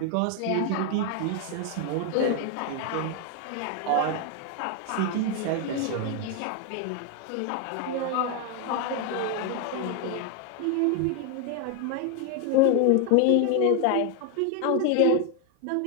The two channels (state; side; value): different; both; correlation 0.01